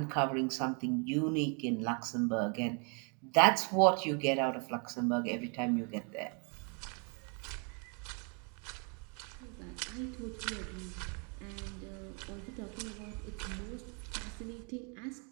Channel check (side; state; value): left; quieter; 37.0 dB